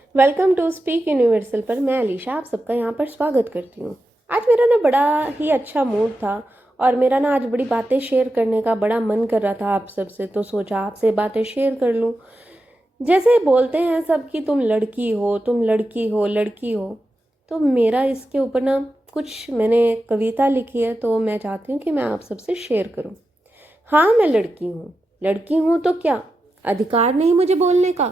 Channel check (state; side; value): normal; both; correlation 0.90